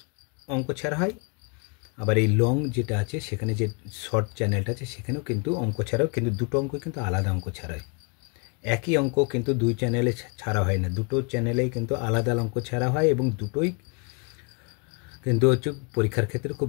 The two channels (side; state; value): right; quieter; 33.4 dB